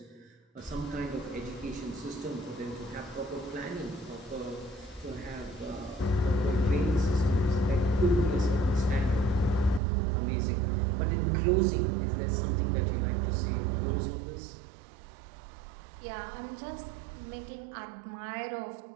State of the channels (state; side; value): drops out; left; at 9.8 s